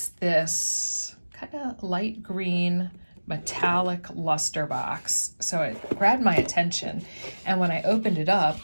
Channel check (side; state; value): both; inverted; correlation -1.00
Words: this kind of light green metallic luster box. So it grabbed my attention. And when I opened it up,